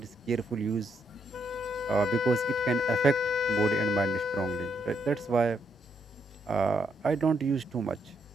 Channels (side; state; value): both; normal; correlation 0.76